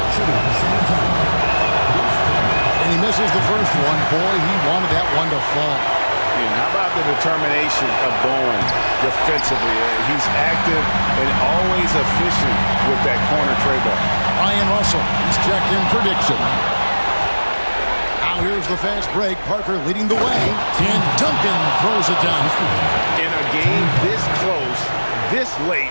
Shooting at the same time. And he misses the first one. Boy, he wanted that one to fall. And how about the determination of Bowen defensively? He's active and always efficient with that corner tray ball. Ryan Russell, he's checked in for Dixon. Now here's the fast break. Parker leading the way. And Duncan throws it down. In a game this close, this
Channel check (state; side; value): inverted; both; correlation -1.00